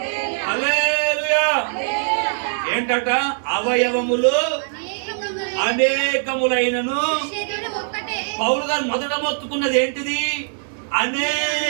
హల్లెలూయా. ఏంటట? అవయవములు అనేకములైనను. పౌలు గారు మొదట మొత్తుకున్నది ఏంటిది?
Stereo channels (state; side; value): silent; left; digital silence